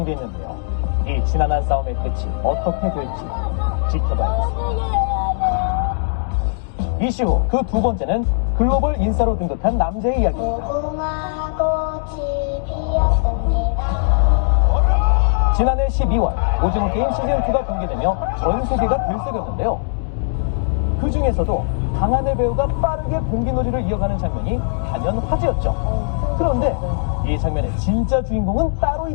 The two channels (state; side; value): silent; right; digital silence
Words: 있는데요. 이 지난한 싸움의 끝이 어떻게 될지 지켜봐야겠습니다. 이슈 후 그 두 번째는 글로벌 인싸로 등극한 남자의 이야기입니다. 지난해 12월 오징어 게임 시즌2가 공개되며 전 세계가 들썩였는데요. 그 중에서도 강하늘 배우가 빠르게 공기놀이를 이어가는 장면이 단연 화제였죠. 그런데 이 장면의 진짜 주인공은 따로